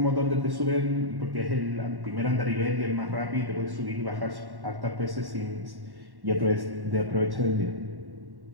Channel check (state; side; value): late; left; 1.1 ms